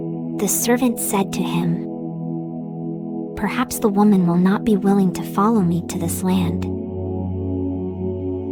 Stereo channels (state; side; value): identical; both; correlation 1.00